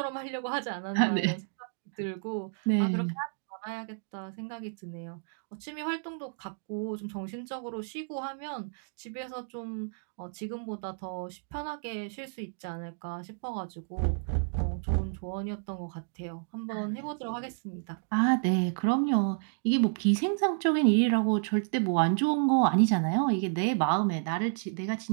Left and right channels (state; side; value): silent; left; digital silence